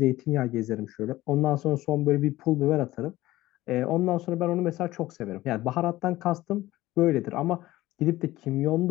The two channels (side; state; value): right; quieter; 16.9 dB